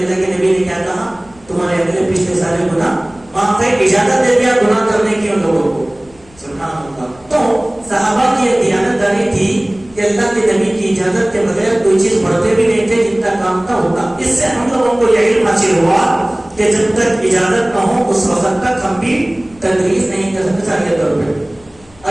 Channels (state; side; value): noise; left; rumble, 27 dB below the sound